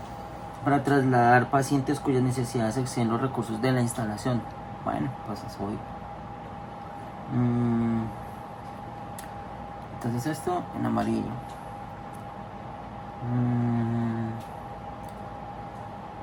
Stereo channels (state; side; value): identical; both; correlation 1.00